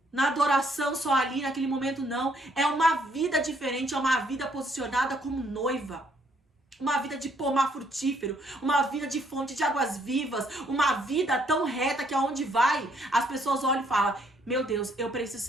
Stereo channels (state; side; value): normal; both; correlation 0.68